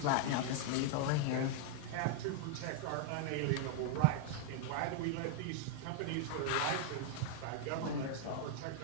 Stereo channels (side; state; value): both; different; correlation -0.01